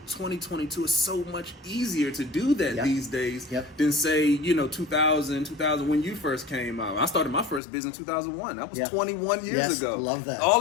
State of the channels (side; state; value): right; drops out; at 7.6 s